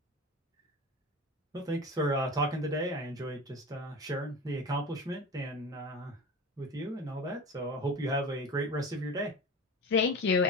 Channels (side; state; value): both; normal; correlation 0.31